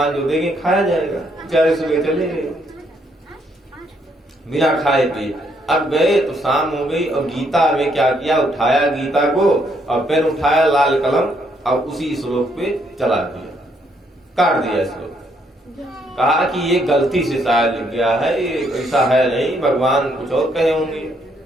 जो देंगे खाया जाएगा। बेचारे सुबह चले गए बिना खाए पिए। अब गए तो शाम हो गई और गीता में क्या किया, उठाया गीता को और पेन उठाया लाल कलम और उसी श्लोक पे चला दिया, काट दिया श्लोक। कहा कि ये गलती से शायद लिख गया है, ये ऐसा है नहीं, भगवान कुछ और कहे होंगे।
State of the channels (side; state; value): both; normal; correlation 0.72